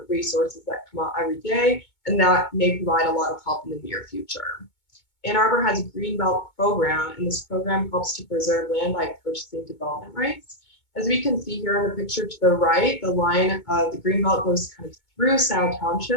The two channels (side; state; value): right; late; 2.2 ms